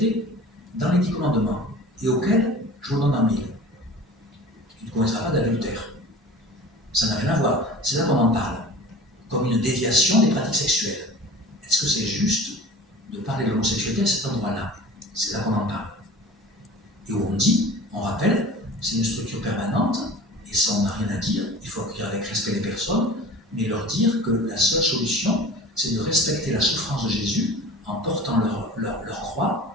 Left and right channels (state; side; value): normal; both; correlation 0.40